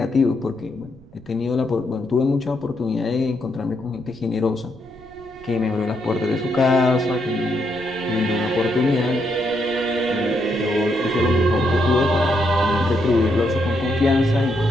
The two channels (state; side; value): noise; right; rumble, 24 dB below the sound